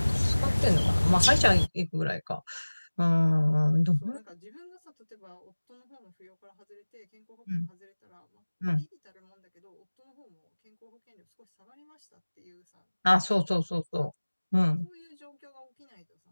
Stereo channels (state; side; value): inverted; both; correlation -1.00